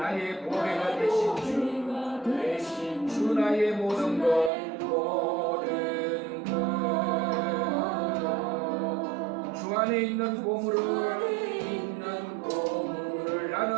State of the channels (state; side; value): drops out; left; at 4.5 s